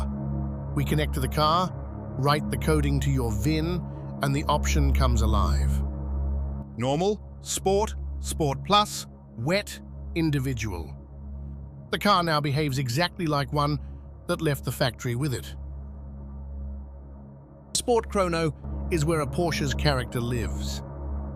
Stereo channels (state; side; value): identical; both; correlation 1.00